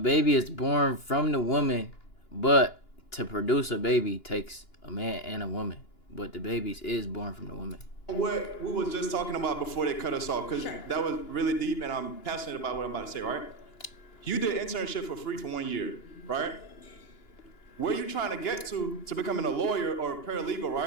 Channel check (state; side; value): late; right; 2.9 ms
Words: is born from the woman, but to produce a baby takes a man and a woman. But the baby is born from the woman. What we was just talking about before they cut us off, because that was really deep and I'm passionate about what I'm about to say, right? You did internship for free for 1 year, right? Where you trying to get to becoming a lawyer or a paralegal,